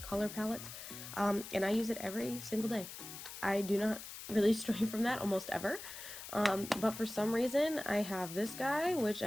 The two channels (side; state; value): left; noise; hiss, 11 dB below the sound